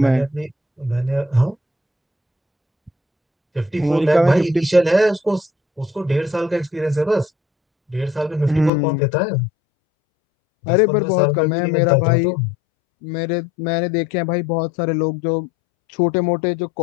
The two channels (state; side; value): drops out; right; at 8.7 s